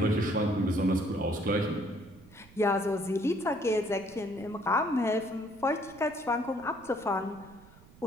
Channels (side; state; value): right; noise; rumble, 23 dB below the sound